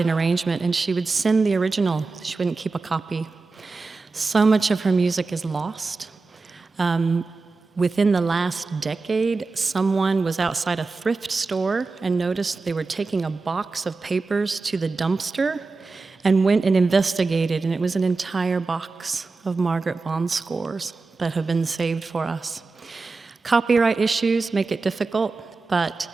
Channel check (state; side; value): quieter; left; 3.9 dB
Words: arrangement and she would send the original. She wouldn't keep a copy. So much of her music is lost. Within the last decade, someone was outside a thrift store and noticed they were taking a box of papers to the dumpster and went and investigated, and it was an entire box of Margaret Bond's scores that have been saved for us. Copyright issues make it difficult, but